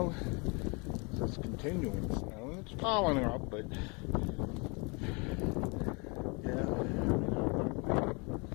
so it's continuing snow, and it's piling up, but yeah,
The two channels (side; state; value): right; quieter; 30.9 dB